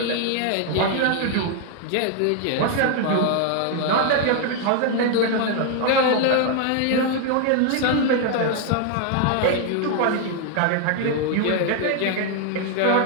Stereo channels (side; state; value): both; different; correlation 0.00